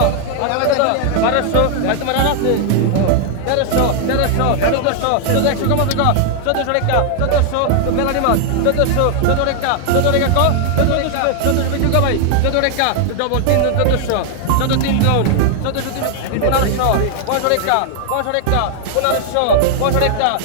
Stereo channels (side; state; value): both; different; correlation -0.01